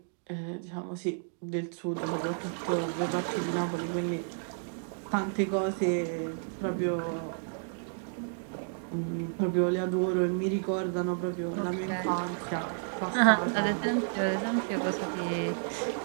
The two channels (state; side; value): silent; left; digital silence